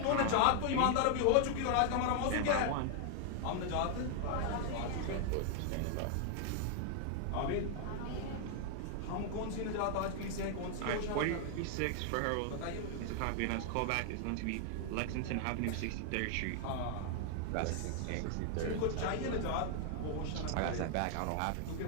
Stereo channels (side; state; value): both; different; correlation 0.00